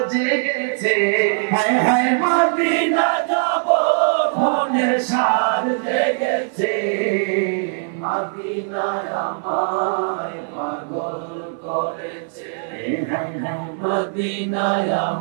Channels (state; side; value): silent; left; 59 dB below the other